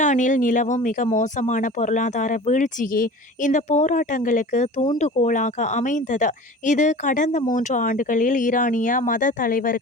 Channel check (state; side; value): normal; both; correlation 0.39